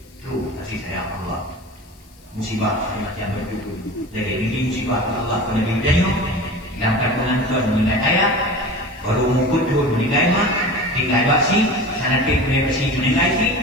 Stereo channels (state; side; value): noise; left; hiss, 29 dB below the sound